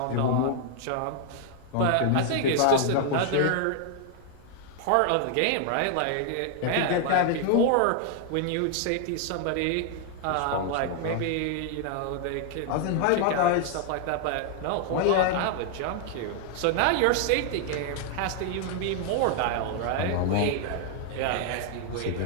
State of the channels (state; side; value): different; both; correlation 0.00